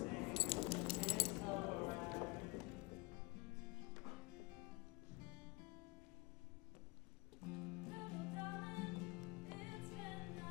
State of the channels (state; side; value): quieter; right; 25.6 dB